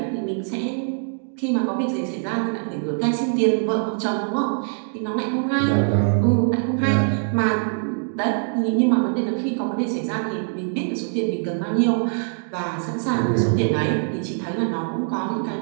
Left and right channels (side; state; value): left; silent; 63 dB below the other